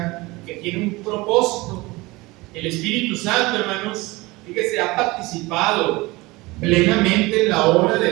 que tiene un propósito. El Espíritu Santo, hermanos, fíjese, ha participado plenamente en la obra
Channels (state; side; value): quieter; left; 22.2 dB